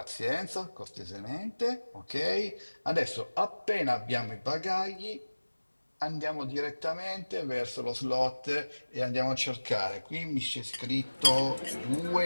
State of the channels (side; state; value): both; inverted; correlation -1.00